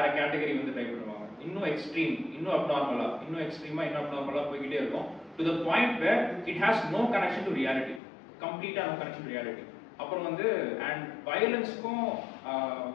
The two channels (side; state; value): right; drops out; at 8.0 s